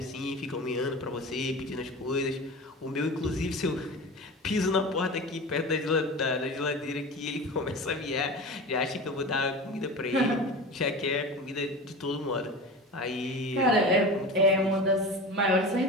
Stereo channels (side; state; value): both; normal; correlation 0.31